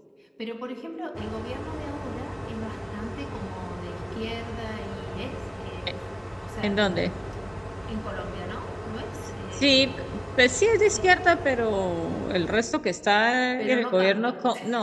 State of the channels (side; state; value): both; identical; correlation 1.00